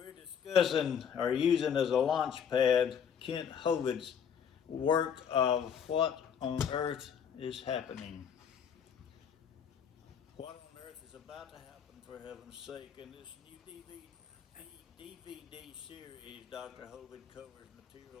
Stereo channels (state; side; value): quieter; right; 7.7 dB